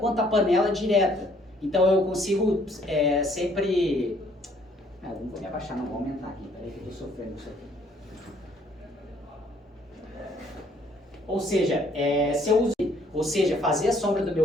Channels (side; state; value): both; normal; correlation 0.63